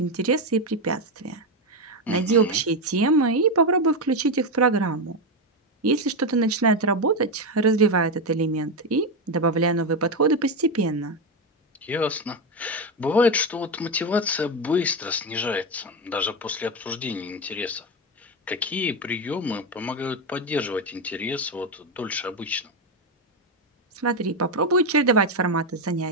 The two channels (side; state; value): both; normal; correlation 0.11